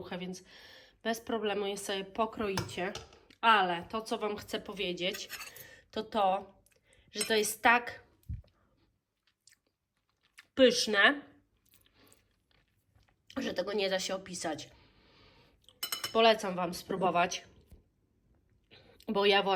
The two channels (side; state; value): both; identical; correlation 1.00